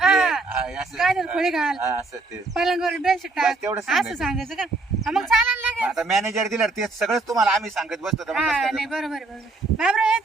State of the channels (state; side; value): quieter; left; 3.5 dB